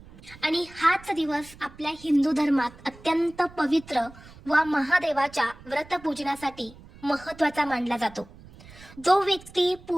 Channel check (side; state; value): right; noise; rumble, 21 dB below the sound